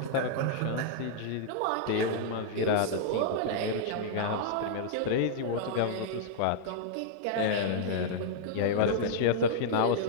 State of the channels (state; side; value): different; both; correlation -0.02